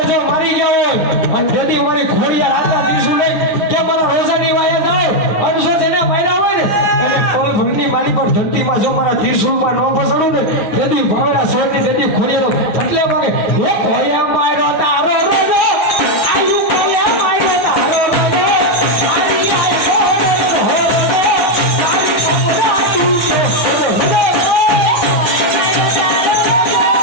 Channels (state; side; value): late; right; 9.4 ms